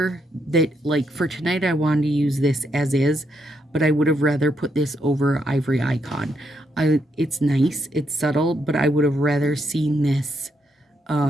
that, like for tonight, I wanted to use this as is, but I would have rather put this over Ivory Icon. It's nice, it's subtle, but I would have rather seen this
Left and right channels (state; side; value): normal; both; correlation 0.78